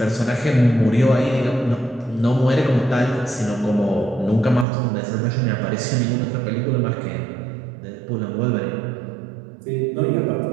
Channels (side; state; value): left; drops out; at 4.7 s